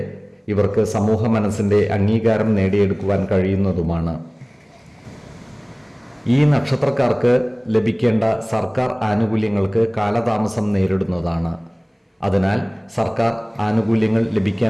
ഇവർക്ക് സമൂഹ മനസ്സിൻ്റെ അംഗീകാരം നേടിയെടുക്കുവാൻ കഴിയുന്നതുമാണ്. ഈ നക്ഷത്രക്കാർക്ക് ലഭിക്കേണ്ട സർക്കാർ ആനുകൂല്യങ്ങൾക്ക് കാലതാമസം നേരിടുന്നതാണ്. അതിനാൽ സർക്കാർ ആനുകൂല്യങ്ങൾ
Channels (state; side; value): identical; both; correlation 1.00